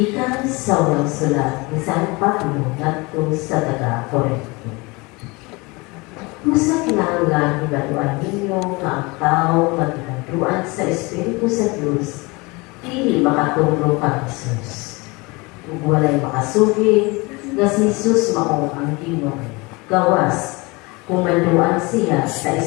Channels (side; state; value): right; quieter; 25.5 dB